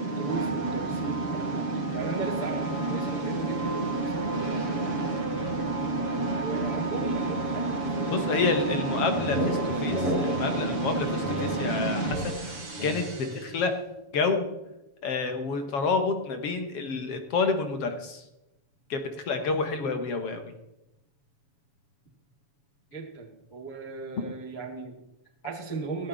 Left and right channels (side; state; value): right; late; 7.0 ms